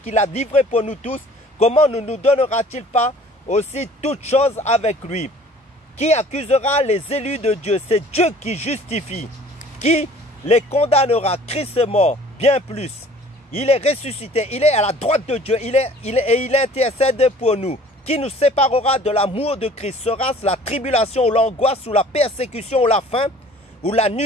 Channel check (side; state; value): both; normal; correlation 0.50